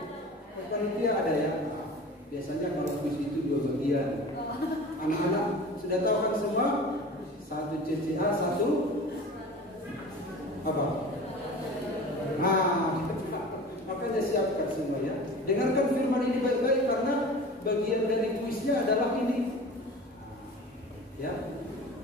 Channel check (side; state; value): both; normal; correlation 0.38